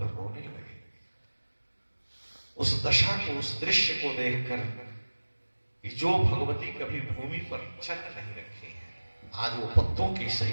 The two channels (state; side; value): inverted; both; correlation -1.00